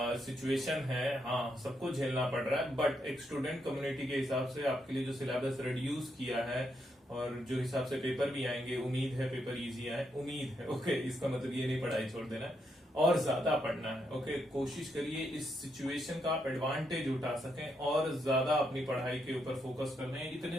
सिचुएशन है, हाँ सबको झेलना पड़ रहा है, बट एक स्टूडेंट कम्युनिटी के हिसाब से आपके लिए जो सिलेबस रिड्यूस किया है और जो हिसाब से पेपर भी आएंगे, उम्मीद है पेपर इजी आए, उम्मीद है। ओके, इसका मतलब ये नहीं पढ़ाई छोड़ देना है, और ज्यादा पढ़ना है। ओके, कोशिश करिए इस सिचुएशन का आप एडवांटेज उठा सकें और ज्यादा अपनी पढ़ाई के ऊपर फोकस करना है।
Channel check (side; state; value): both; normal; correlation 0.79